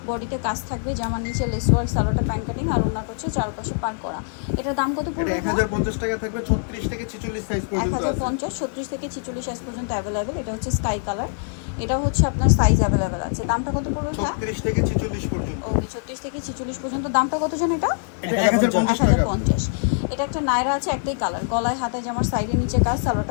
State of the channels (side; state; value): right; silent; 63 dB below the other